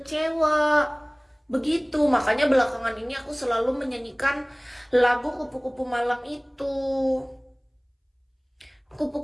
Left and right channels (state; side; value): identical; both; correlation 1.00